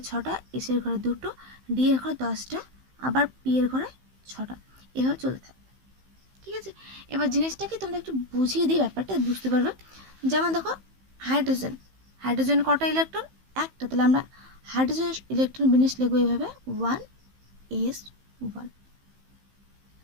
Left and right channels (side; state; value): left; late; 15 ms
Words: 6টা, এস এর ঘরে দুটো, ডি এর ঘরে 10টা, আবার পি এর ঘরে 6টা, এভাবে চলতে থাকবে, ঠিক আছে। এবার জিনিসটাকে তোমরা একটু বুঝিয়ে দিই, ব্যাপারটা বুঝতে পারবে। যেমন দেখো হাইড্রোজেন, হাইড্রোজেন কটা ইলেকট্রন? একটা, তাহলে আমরা হাইড্রোজেন ইলেকট্রন বিন্যাস লিখবো এইভাবে 1s1,